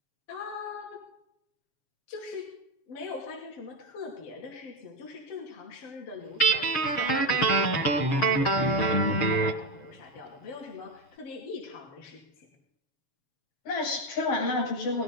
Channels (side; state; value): right; late; 7.2 ms